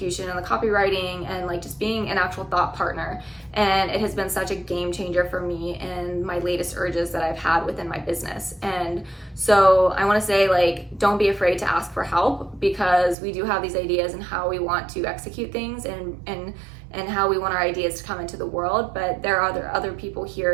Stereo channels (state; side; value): drops out; left; at 13.2 s